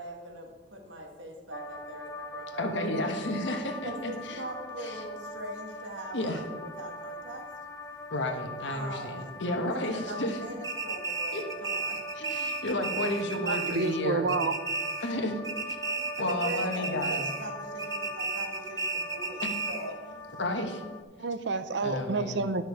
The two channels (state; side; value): normal; both; correlation -0.08